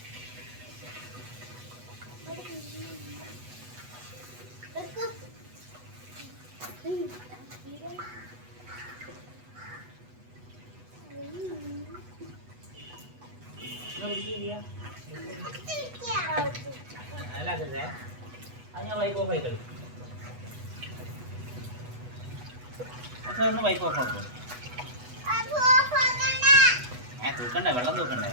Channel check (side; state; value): left; late; 8.1 ms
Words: കേട്ടില്ല അല്ലാക്കല്ലേ അത് ഞാൻ വൈപ്പ് ഓഫ് ആയി കളി ഒന്ന് വൈപ്പ് ഓഫ് ആക്കും തൂക്കണ്ടേ വെള്ളം തൂക്കണ്ടേ